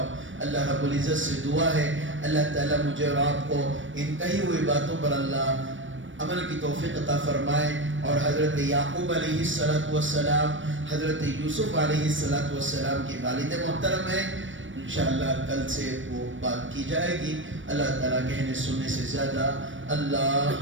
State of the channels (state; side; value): late; left; 0.56 ms